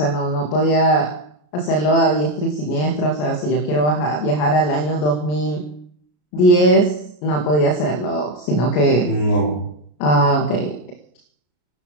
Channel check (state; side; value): late; right; 33 ms